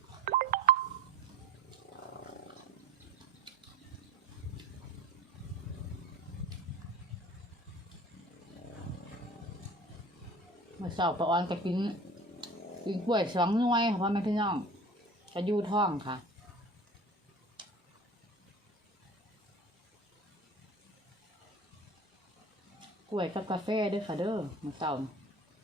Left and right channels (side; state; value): both; normal; correlation 0.41